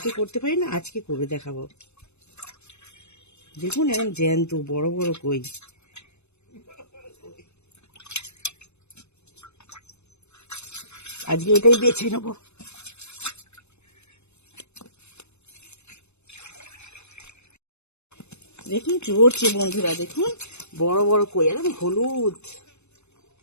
করতে পারি না, আজকে করে দেখাবো। দেখুন এরকম জ্যান্ত বড় বড় কই। আজকে এটাই বেছে নেবো। দেখুন চড়ছে বন্ধুরা, দেখুন বড় বড় কই, একদম হলুদ।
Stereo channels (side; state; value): right; late; 0.81 ms